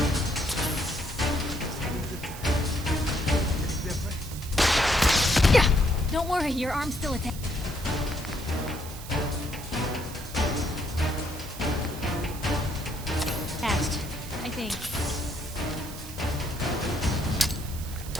Don't worry, your arm's still attached. I think.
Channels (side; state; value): right; noise; hiss, 13 dB below the sound